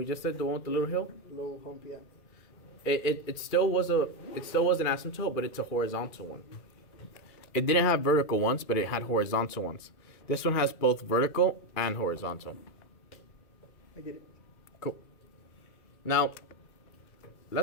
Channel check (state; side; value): late; right; 2.4 ms